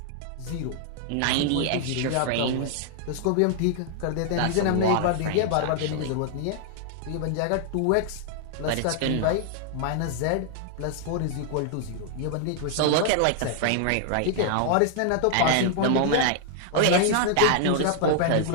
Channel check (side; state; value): both; different; correlation 0.00